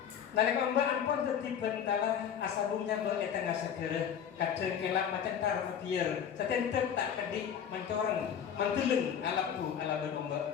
nalek ombak ampun tertibat bentalah asabungnya beretengah segera kadang kelak macam tar biar setentet tak kedi mencoreng menteleng alapu ala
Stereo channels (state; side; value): quieter; right; 8.4 dB